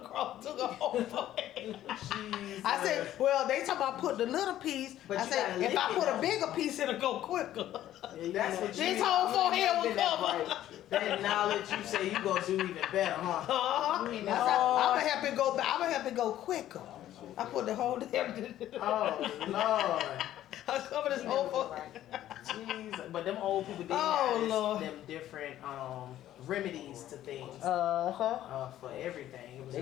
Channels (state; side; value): quieter; right; 12.8 dB